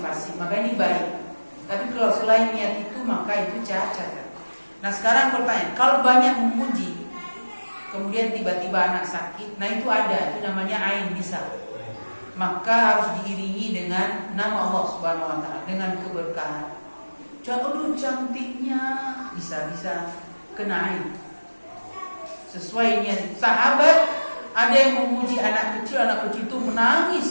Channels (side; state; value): both; inverted; correlation -1.00